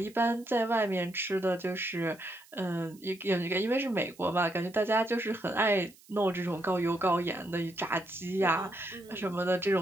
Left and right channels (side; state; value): right; noise; hiss, 26 dB below the sound